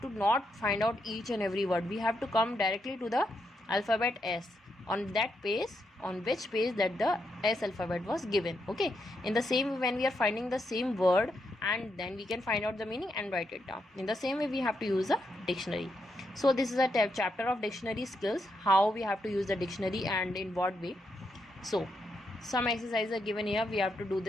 to not find out each and every word. We have to come directly to the alphabet S on that page, on which page that the S alphabet was given. Okay, in the same way, when we are finding the same word, and then we can find out the meaning and write it down. In the same way, we have to use a dictionary. So this is a chapter of dictionary skills, how we have to use the dictionary and in what way. So some exercises are given here. We have to do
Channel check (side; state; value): both; normal; correlation 0.81